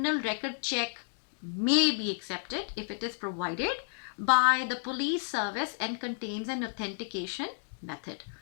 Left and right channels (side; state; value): right; silent; digital silence